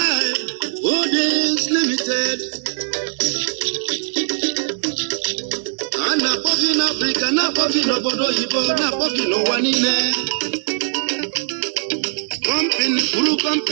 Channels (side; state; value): left; silent; 66 dB below the other